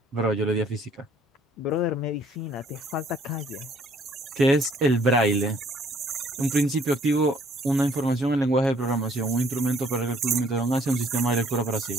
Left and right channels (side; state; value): both; normal; correlation 0.61